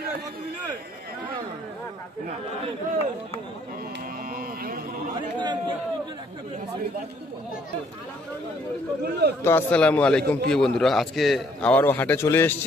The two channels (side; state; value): both; normal; correlation 0.65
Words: তো আসসালামু আলাইকুম প্রিয় বন্ধুরা, আজকে আবারও হাটে চলে